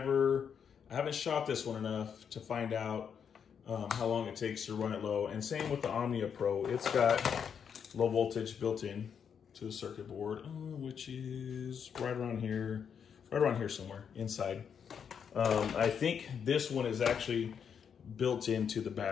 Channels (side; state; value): right; quieter; 7.4 dB